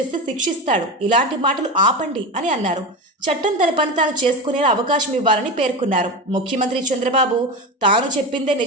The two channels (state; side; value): normal; both; correlation 0.22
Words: శిక్షిస్తాడు, ఇలాంటి మాటలు ఆపండి అని అన్నారు. చట్టం తన పని తాను చేసుకునేలా అవకాశం ఇవ్వాలని పేర్కొన్నారు. ముఖ్యమంత్రి చంద్రబాబు తాను చెప్పిందే